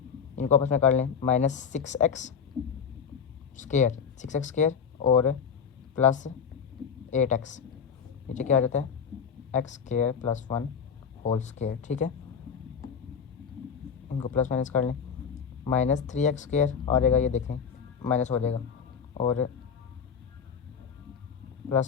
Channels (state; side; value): quieter; right; 6.8 dB